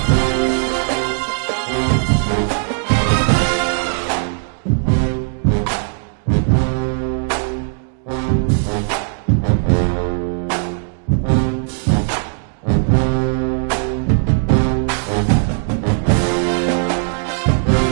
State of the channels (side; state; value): left; silent; 59 dB below the other